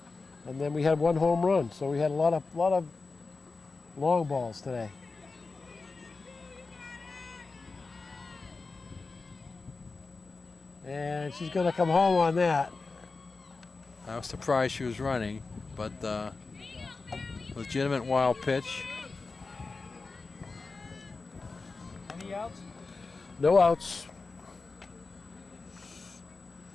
And then we had 1 home run, so we had a lot of long balls today. And she's going to come home on that. I was surprised she was running, but legitimate wild pitch. Any outs? No outs.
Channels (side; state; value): right; quieter; 4.0 dB